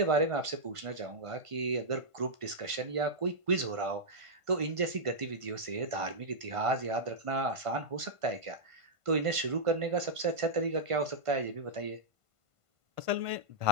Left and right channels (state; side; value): late; left; 1.5 ms